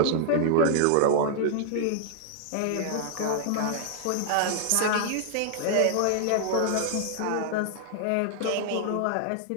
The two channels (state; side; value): different; both; correlation 0.00